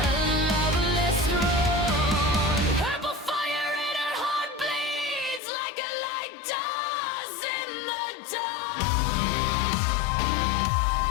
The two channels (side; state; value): right; drops out; at 5.4 s